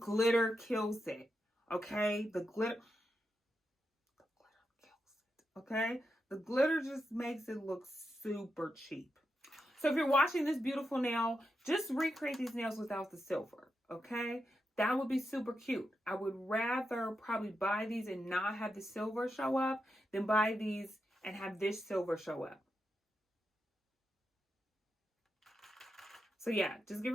kills it. Okay, the glitter kills it. Okay, the glitter just makes it look super cheap. So if you're watching this beautiful nail, just recreate these nails without the silver, okay? That would be super cute. I would rather probably buy these and not have the silver show up than buy these and have this silver show up. So yeah, just get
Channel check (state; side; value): normal; both; correlation 0.86